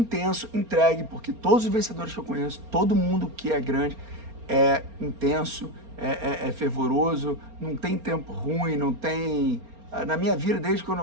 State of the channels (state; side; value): late; left; 4.3 ms